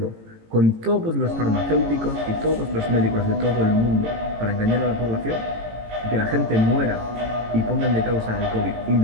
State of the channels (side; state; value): left; late; 18 ms